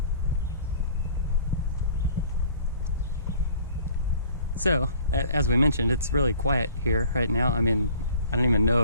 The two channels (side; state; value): both; inverted; correlation -0.50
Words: So, as we mentioned, it's really quiet here right now. I mean, I don't even know